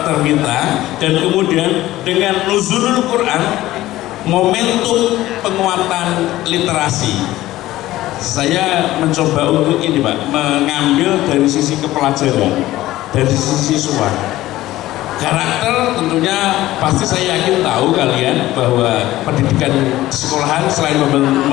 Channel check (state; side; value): quieter; right; 15.9 dB